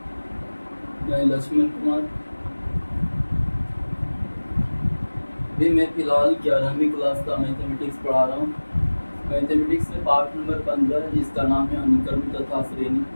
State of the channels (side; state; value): both; inverted; correlation -1.00